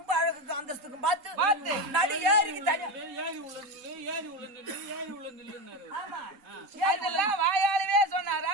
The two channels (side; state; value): left; late; 4.1 ms